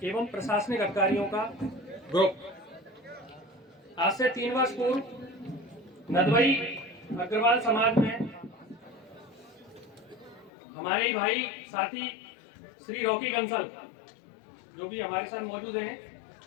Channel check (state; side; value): drops out; right; at 10.5 s